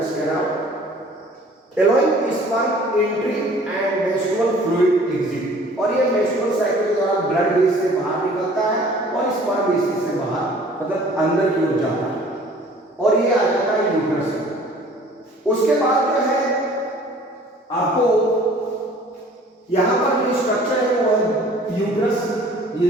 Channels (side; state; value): both; normal; correlation 0.51